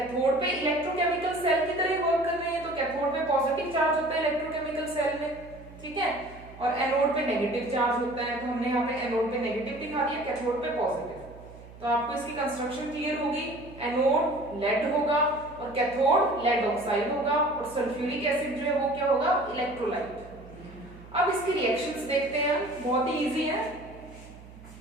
पे इलेक्ट्रोकेमिकल सेल की तरह वर्क कर रहे हैं, तो कैथोड पे पॉजिटिव चार्ज होता है इलेक्ट्रोकेमिकल सेल में। ठीक है, और एनोड पे नेगेटिव चार्ज होता है, तो हमने यहाँ पे एनोड पे नेगेटिव दिखा दिया, कैथोड पे पॉजिटिव। तो आपको इसकी कंस्ट्रक्शन क्लियर होगी। एनोड लेड होगा और कैथोड लेड ऑक्साइड होगा और सल्फ्यूरिक एसिड जो है वो क्या होगा, इलेक्ट्रोलाइट। अब इसकी रिएक्शंस देखते हैं, बहुत ही इजी है।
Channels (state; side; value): noise; right; hum, 19 dB below the sound